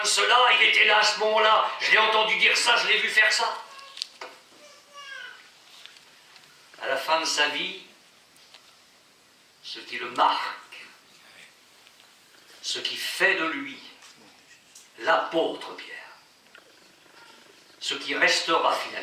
cela, il était là à ce moment-là, je l'ai entendu dire ça, je l'ai vu faire ça. À la fin de sa vie, ce qui le marque, ce qui fait de lui l'apôtre Pierre, ce qui restera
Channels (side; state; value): both; identical; correlation 1.00